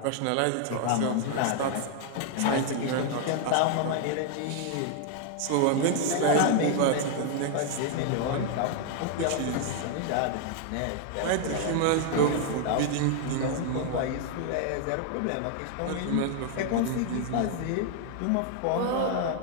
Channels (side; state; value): both; different; correlation 0.00